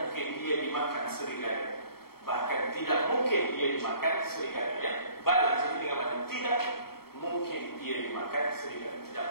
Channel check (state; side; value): late; right; 0.95 ms